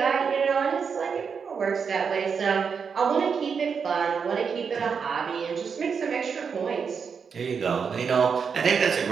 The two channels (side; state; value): left; quieter; 6.1 dB